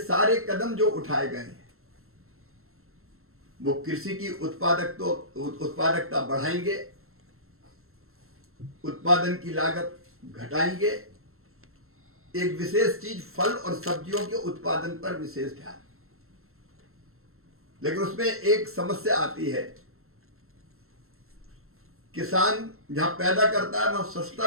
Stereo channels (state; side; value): late; left; 0.62 ms